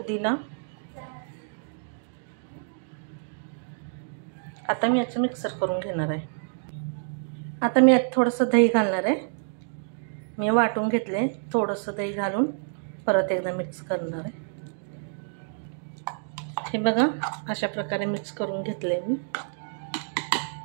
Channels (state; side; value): silent; left; digital silence